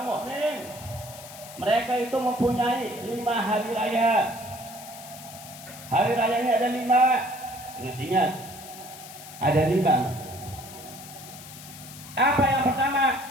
mukmin mereka itu mempunyai 5 hari raya. Hari rayanya ada 5. Ingat-ingat, ada 5. Apa yang pertama?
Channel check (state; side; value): noise; left; hiss, 15 dB below the sound